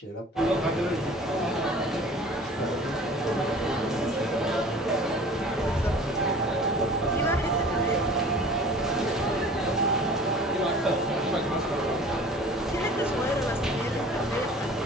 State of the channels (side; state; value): both; normal; correlation 0.45